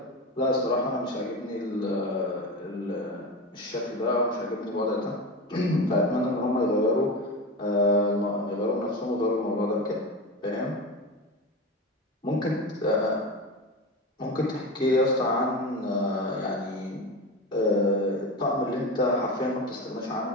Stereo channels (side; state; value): both; normal; correlation 0.24